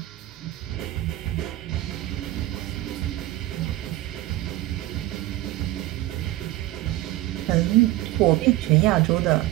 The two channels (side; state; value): left; quieter; 16.7 dB